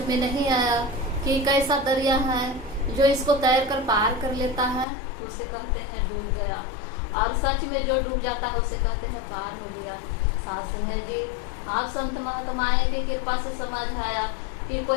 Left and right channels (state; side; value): drops out; right; at 4.9 s